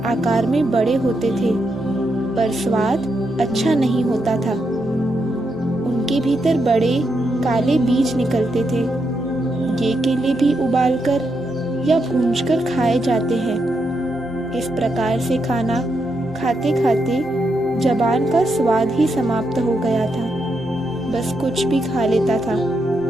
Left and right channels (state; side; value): normal; both; correlation 0.82